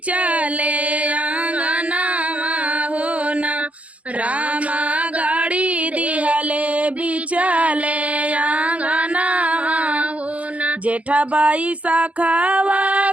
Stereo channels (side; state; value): left; late; 0.066 ms